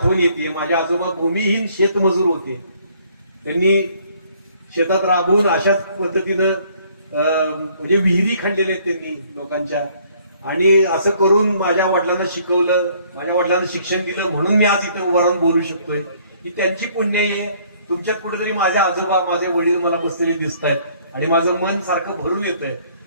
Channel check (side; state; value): both; inverted; correlation -0.62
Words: येते. माझे आजोबा भूमिहीन शेतमजूर होते. त्यांनी शेतात राबून अशाच पद्धतीनं म्हणजे विहिरी खणलेल्या आहेत त्यांनी लोकांच्या, आणि असं करून माझ्या वडिलांना शिकवलं, माझ्या वडिलांना शिक्षण दिलं, म्हणून मी आज इथे उभा राहून बोलू शकतोय. ही त्यांची पुण्य आहे. तुमच्यात कुठेतरी माझे आजोबा, माझे वडील मला बसलेले दिसत आहेत आणि माझं मन सारखं भरून येतंय.